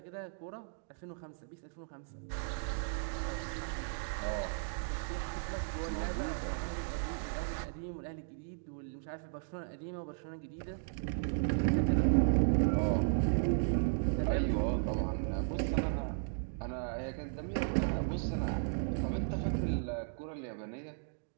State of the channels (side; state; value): left; silent; digital silence